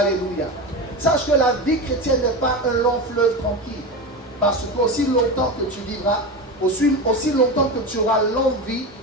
Sache que la vie chrétienne n'est pas un long fleuve tranquille, parce qu'aussi longtemps que tu vivras, aussi longtemps que tu auras l'envie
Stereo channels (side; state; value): both; normal; correlation 0.22